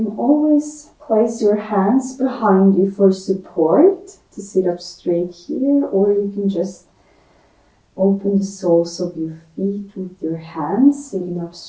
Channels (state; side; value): identical; both; correlation 1.00